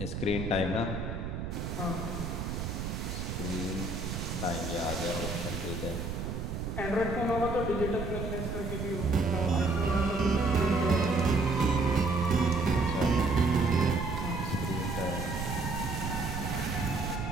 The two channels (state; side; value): noise; right; rumble, 4 dB below the sound